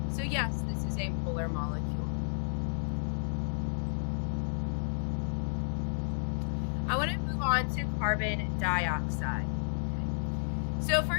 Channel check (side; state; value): right; silent; digital silence